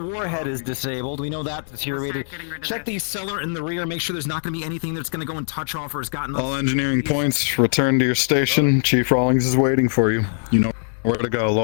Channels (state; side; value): silent; right; digital silence